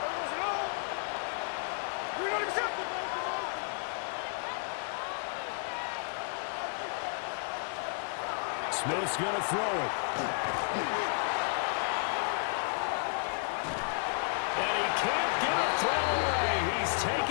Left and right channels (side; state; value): right; silent; 56 dB below the other